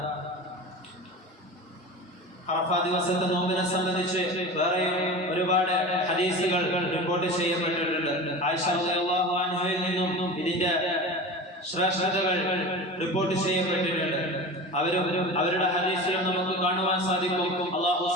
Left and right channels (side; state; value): both; normal; correlation 0.31